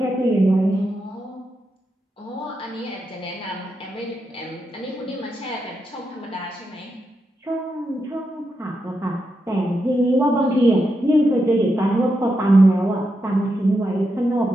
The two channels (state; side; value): normal; both; correlation 0.85